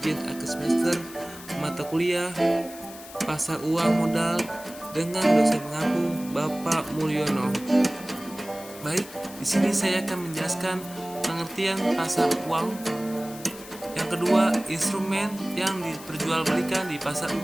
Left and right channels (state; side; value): noise; left; hiss, 16 dB below the sound